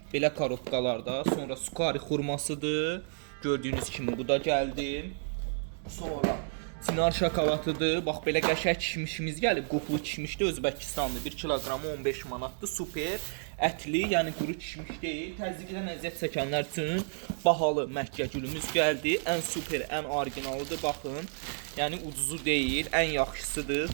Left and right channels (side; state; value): left; silent; digital silence